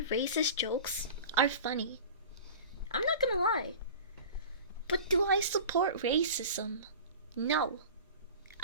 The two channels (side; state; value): both; inverted; correlation -0.37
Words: racist jokes are funny. I'm not gonna lie. But do I support racism? No,